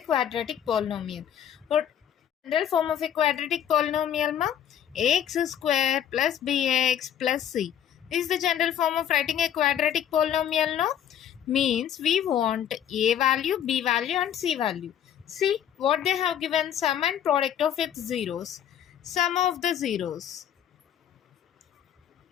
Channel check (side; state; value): right; quieter; 9.7 dB